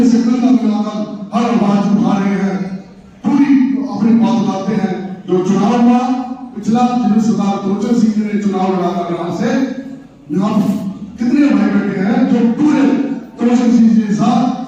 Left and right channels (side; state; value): both; identical; correlation 1.00